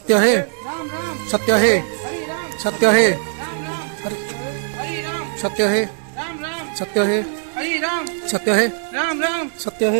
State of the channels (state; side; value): silent; left; digital silence